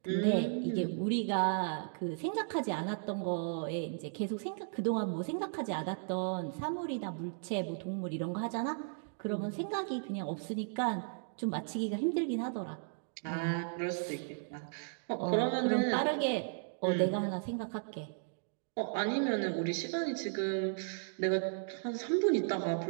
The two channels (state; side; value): silent; left; digital silence